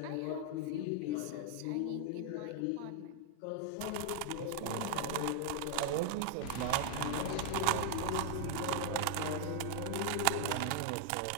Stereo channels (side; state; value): both; different; correlation 0.00